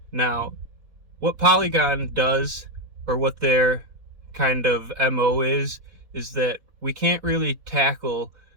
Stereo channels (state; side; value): late; left; 4.1 ms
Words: Now, what Polygon does, or what their kind of MO is that we can't really tackle